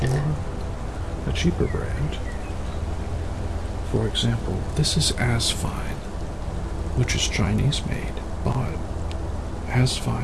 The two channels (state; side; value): identical; both; correlation 1.00